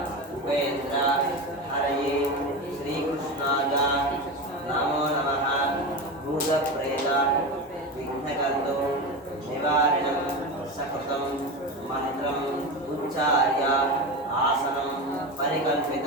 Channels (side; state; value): both; normal; correlation 0.22